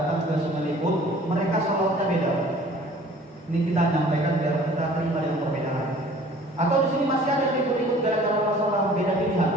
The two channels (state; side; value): normal; both; correlation 0.50